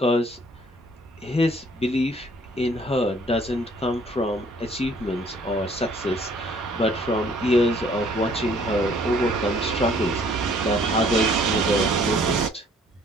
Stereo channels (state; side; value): normal; both; correlation 0.59